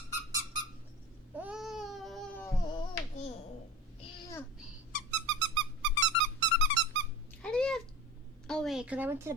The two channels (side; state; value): both; normal; correlation 0.32